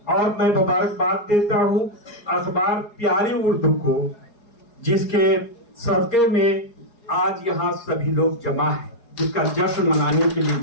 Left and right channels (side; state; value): right; late; 4.8 ms